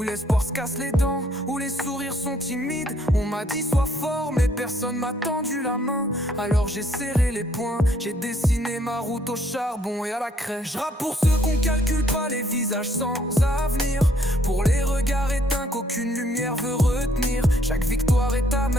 l'espoir se casse les dents, où les sourires sont timides. On m'a dit sois fort mais personne m'a tendu la main. Alors j'ai serré les poings, j'ai dessiné ma route au charbon et à la craie. Je rappe pour ceux qu'on calcule pas, les visages sans avenir. Pour les regards éteints qu'aucune lumière veut retenir. Chaque victoire est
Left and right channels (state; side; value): normal; both; correlation 0.66